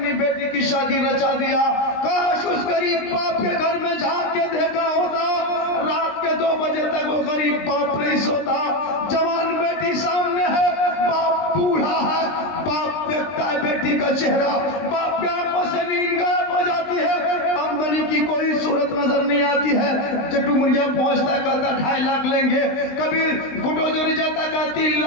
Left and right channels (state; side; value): late; right; 20 ms